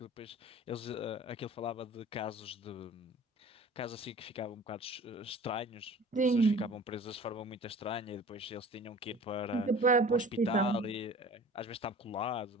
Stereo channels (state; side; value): normal; both; correlation 0.43